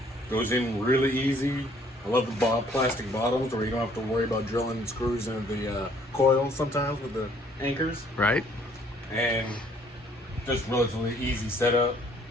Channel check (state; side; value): normal; both; correlation 0.62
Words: Goes in really easy. I love the plastic bottoms where you don't have to worry about drilling screws into the coils sometimes with the anchors. Right. And just relatively easy setup.